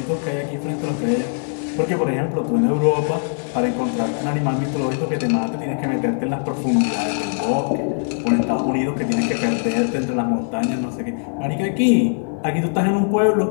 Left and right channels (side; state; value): right; silent; 65 dB below the other